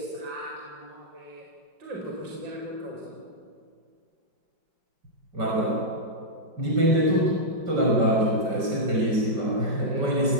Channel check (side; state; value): left; late; 5.2 ms